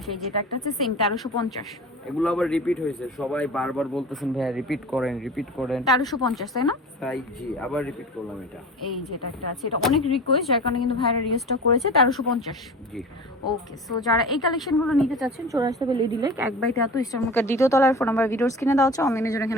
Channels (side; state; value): both; normal; correlation 0.35